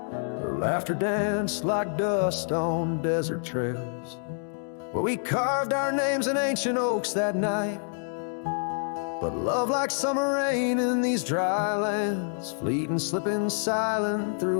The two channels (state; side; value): silent; right; digital silence